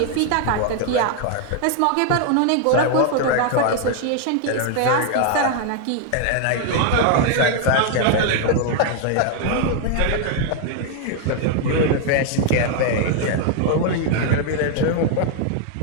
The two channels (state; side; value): different; both; correlation 0.00